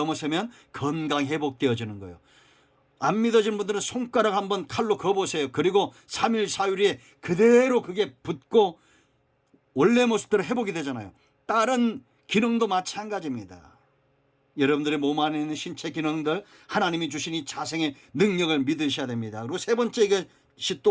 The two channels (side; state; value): both; identical; correlation 1.00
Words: 건강 회복되어지는 거예요. 안 믿어지는 분들은 손가락 한번 칼로 그어보세요. 그리고 3일 4일에 그대로 그게 붙고 원래 모습대로 회복이 되잖아요. 다른 기능도 마찬가지입니다. 여러분들의 몸 안에 있는 신체 기능들, 하나님이 주신 이 자생의 능력을 믿으셔야 됩니다. 그리고 세 번째, 이것이